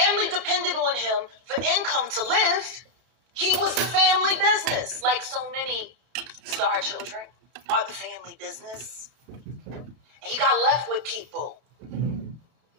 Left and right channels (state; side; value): late; left; 32 ms